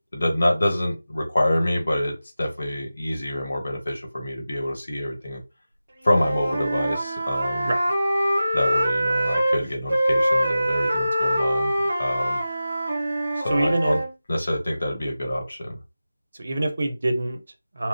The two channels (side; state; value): both; inverted; correlation -0.94